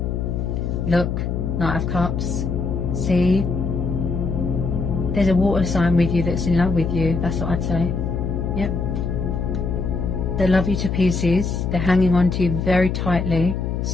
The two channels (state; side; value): noise; left; hum, 1 dB below the sound